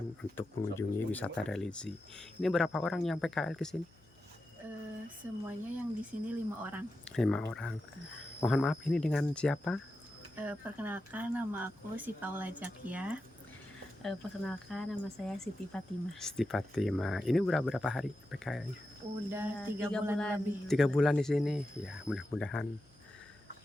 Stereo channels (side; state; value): left; noise; hum, 29 dB below the sound